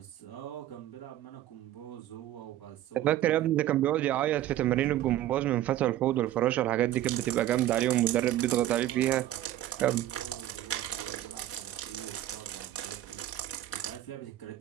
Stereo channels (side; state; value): left; quieter; 13.4 dB